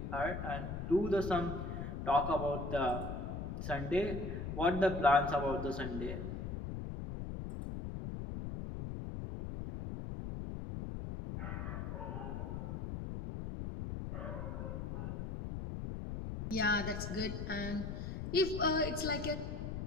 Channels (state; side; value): noise; left; rumble, 5 dB below the sound